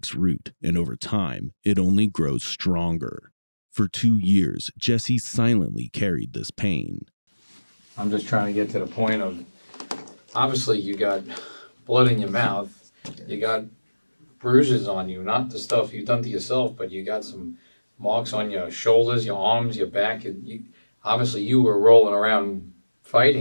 root, and over time, it only grows stronger. For 2 years, Jesse silently carried this pain. I'm just trying to get to the point of, obviously you got blood in your mouth, you got bruises on you, not the stuff you've done to yourself, but you got some marks on your shoulders, your arms, your back. Obviously you were rolling around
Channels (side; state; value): both; inverted; correlation -1.00